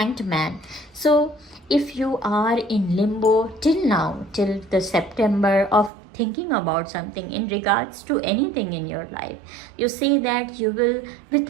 Man. So if you are in limbo till now, till the September, of thinking about something in regards to anything in your life, you say that you will,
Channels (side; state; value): left; drops out; at 5.9 s